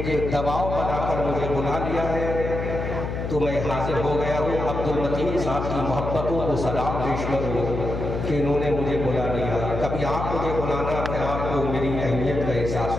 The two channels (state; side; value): noise; left; hum, 4 dB below the sound